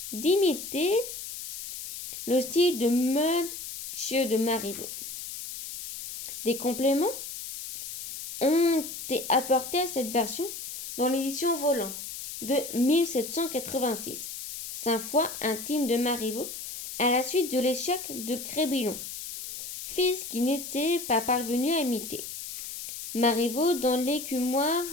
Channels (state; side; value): noise; left; hiss, 9 dB below the sound